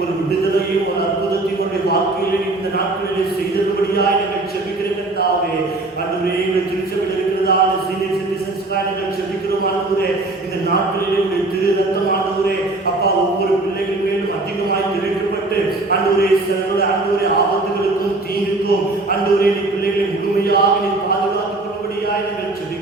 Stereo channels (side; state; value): left; quieter; 3.0 dB